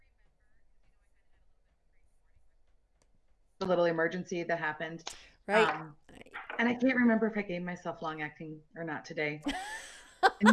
remember the little emergency that happened. Right. And I can't remember if I gave myself long acting or not today. And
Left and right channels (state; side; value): identical; both; correlation 1.00